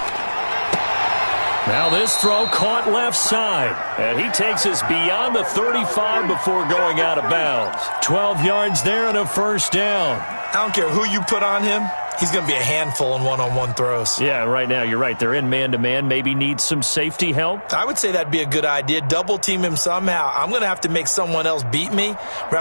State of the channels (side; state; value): both; inverted; correlation -1.00